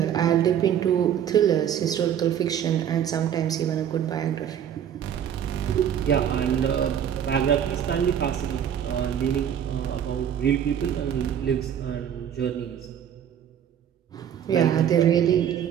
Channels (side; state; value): left; quieter; 9.3 dB